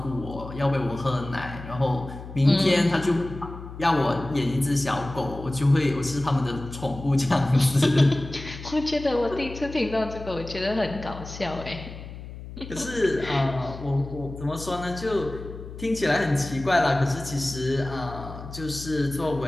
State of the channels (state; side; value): noise; left; hum, 12 dB below the sound